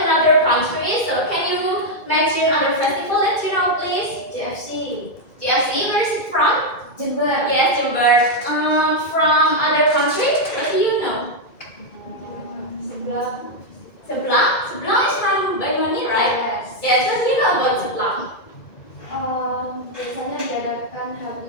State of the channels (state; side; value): late; right; 2.3 ms